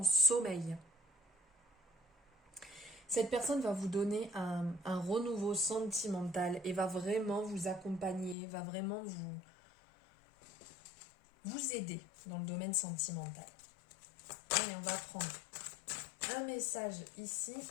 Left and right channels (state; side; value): drops out; right; at 8.3 s